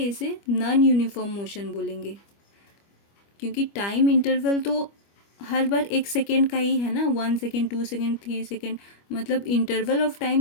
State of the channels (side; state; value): right; late; 25 ms